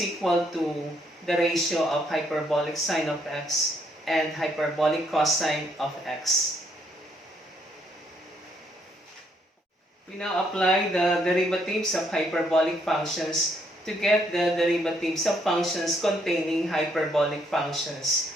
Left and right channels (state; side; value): normal; both; correlation 0.71